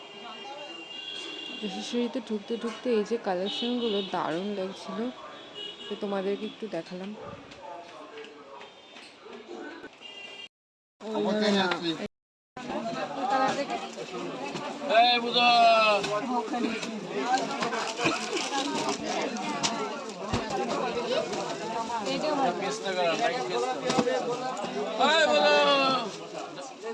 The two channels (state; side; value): identical; both; correlation 1.00